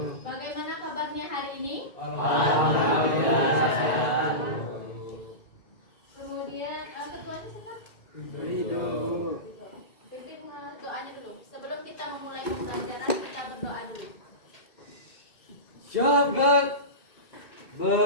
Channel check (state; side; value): late; right; 2.2 ms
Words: Bagaimana kabarnya hari ini? Alhamdulillah sehat. Kemudian ketuanya siapa? Pimpin doanya dulu. Sebelum kita memulai pembelajaran, kita berdoa dulu. Syabat